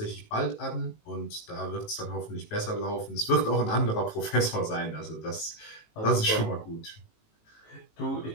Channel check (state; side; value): late; right; 18 ms